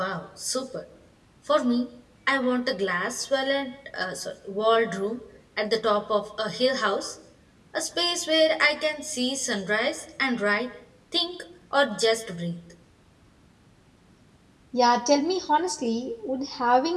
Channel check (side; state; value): both; identical; correlation 1.00